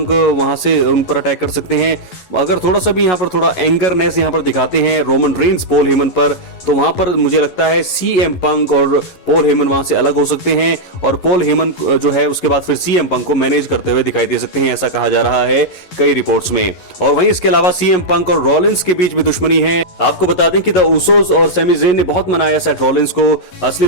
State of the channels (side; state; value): right; late; 11 ms